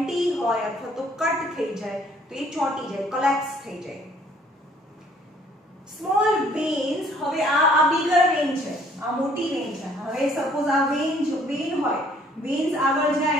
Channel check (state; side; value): normal; both; correlation 0.60